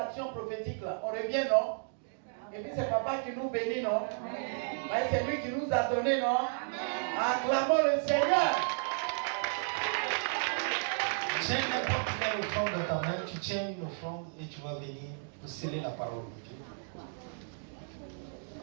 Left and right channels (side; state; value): left; silent; digital silence